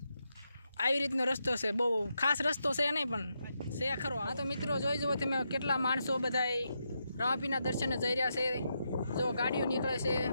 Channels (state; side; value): inverted; both; correlation -0.83